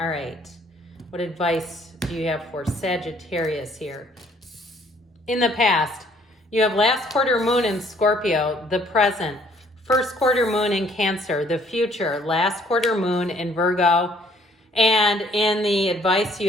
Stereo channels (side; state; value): both; normal; correlation 0.62